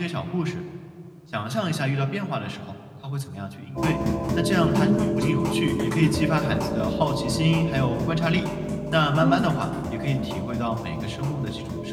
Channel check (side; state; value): both; identical; correlation 1.00